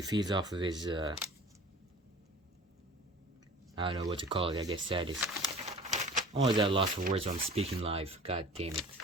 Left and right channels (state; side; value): normal; both; correlation 0.42